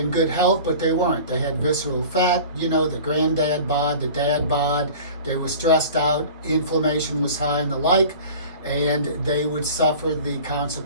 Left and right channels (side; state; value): both; inverted; correlation -0.41